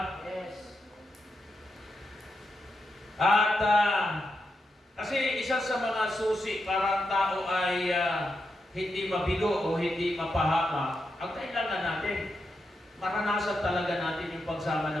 Yes. At kasi isa sa mga susi para ang tao ay hindi mabigo o hindi mapahamak, ang kailangan natin, maranasan talaga natin yung pagsama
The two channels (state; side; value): normal; both; correlation 0.86